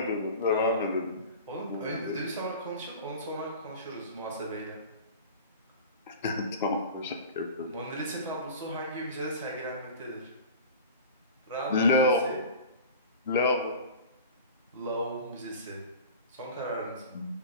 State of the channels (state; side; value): inverted; both; correlation -0.36